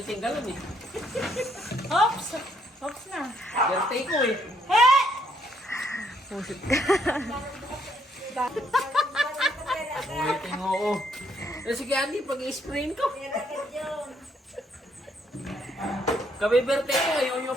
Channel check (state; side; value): normal; both; correlation 0.71